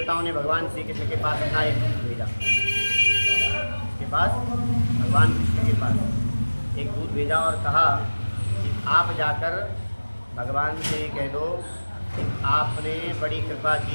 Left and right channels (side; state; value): both; inverted; correlation -1.00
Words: ने भगवान श्री कृष्ण के पास अपना एक दूत भेजा, इसके पास भगवान कृष्ण के पास एक दूत भेजा और कहा कि आप जाकर भगवान से कह दो कि आपने बड़ी कृपा